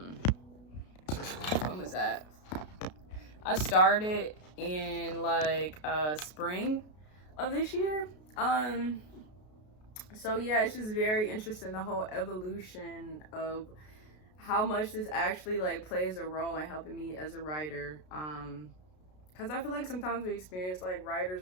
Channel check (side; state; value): right; late; 33 ms